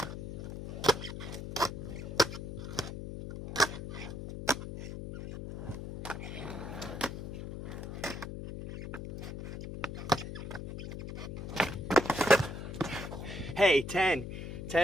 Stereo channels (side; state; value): left; noise; hum, 7 dB below the sound